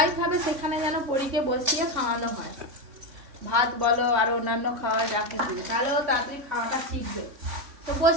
খাবে সেখানে যেন পরীকে বসিয়ে খাওয়ানো হয়। ভাত বলো আর অন্যান্য খাওয়া যা কিছু, তাহলে ও তাড়াতাড়ি খাওয়াটা শিখবে। তো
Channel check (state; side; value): late; left; 3.6 ms